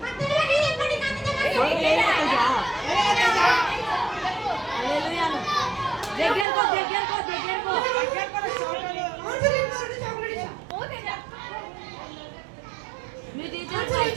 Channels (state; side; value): drops out; left; at 6.5 s